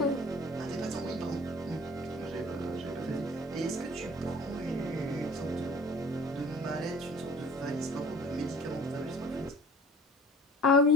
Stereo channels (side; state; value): both; normal; correlation 0.47